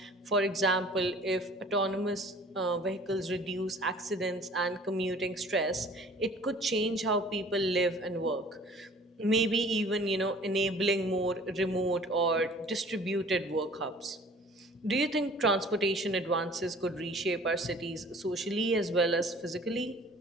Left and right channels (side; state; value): both; normal; correlation 0.49